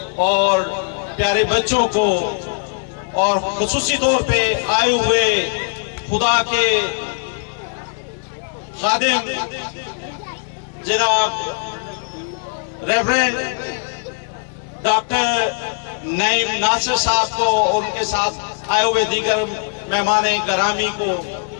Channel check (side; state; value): right; silent; 66 dB below the other